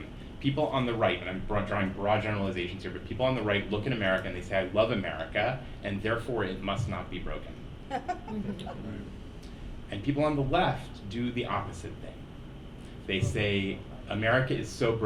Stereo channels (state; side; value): identical; both; correlation 1.00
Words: People on the right, and I'm drawing broad generalizations here, but people on the right look at America and they say, I love America, and therefore it must not be broken. And people on the left do the opposite thing. They say, America is so